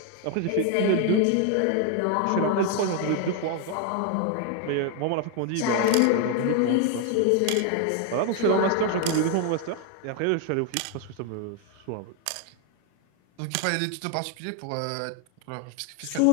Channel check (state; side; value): different; both; correlation 0.01